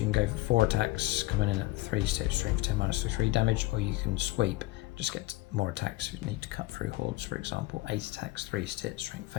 can go for 4 attacks, coming in at 3 stat, strength 10 -3 damage, or you can sweep, just get more attacks if you need to cut through hordes, for example. 8 attacks, 3 stat, strength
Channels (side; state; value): right; quieter; 19.0 dB